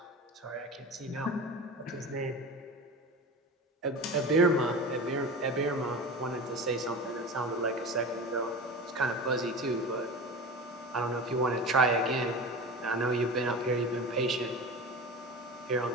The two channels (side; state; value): both; normal; correlation 0.31